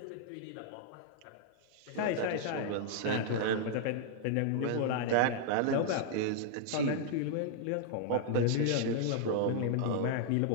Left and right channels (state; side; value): different; both; correlation -0.01